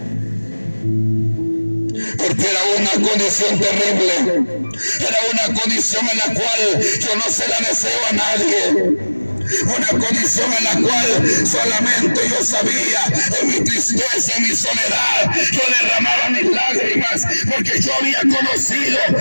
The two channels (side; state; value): both; inverted; correlation -1.00